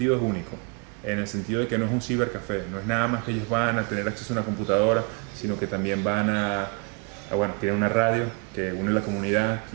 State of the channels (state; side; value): quieter; left; 30.2 dB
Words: es único, en el sentido de que no es un cibercafé, no es nada más que ellos van a tener acceso a una computadora, sino que también van bueno, tienen una radio que une la comunidad,